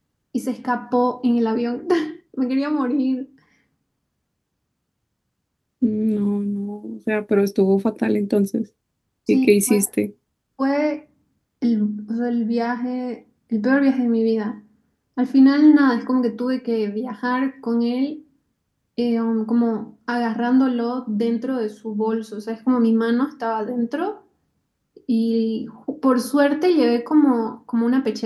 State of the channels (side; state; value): both; identical; correlation 1.00